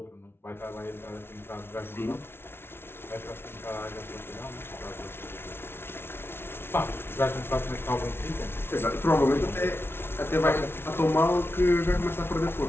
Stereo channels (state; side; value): late; right; 0.11 ms